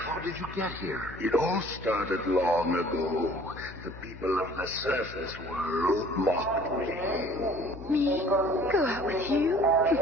did you get here? It all started long ago. The people of the surface world mocked me. Me? Go out with you?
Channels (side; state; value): left; noise; hum, 15 dB below the sound